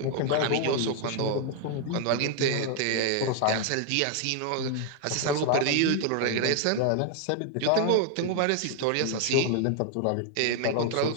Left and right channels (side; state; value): both; different; correlation 0.00